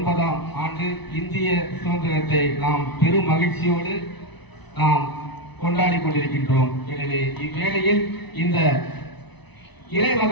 ஆண்டு இந்திய சுதந்திரத்தை நாம் பெரும் மகிழ்ச்சியோடு நாம் கொண்டாடி கொண்டிருக்கின்றோம். எனவே இவ்வேளையில் இந்த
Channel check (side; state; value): right; late; 0.99 ms